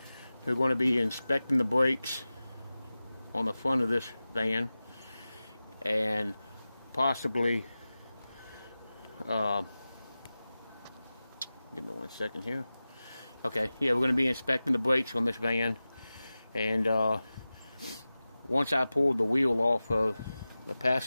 going to be inspecting the brakes on the front of this van, and possibly give me 1 second here. Okay, yeah, we're going to be inspecting the brakes on this van, and once I pulled the wheel off of the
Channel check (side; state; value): both; inverted; correlation -0.96